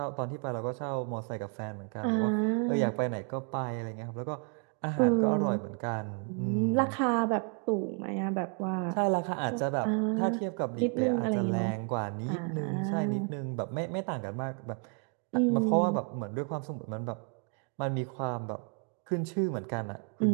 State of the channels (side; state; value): left; quieter; 38.7 dB